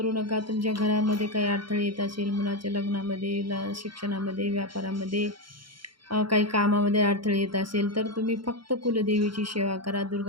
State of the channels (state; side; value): late; left; 0.73 ms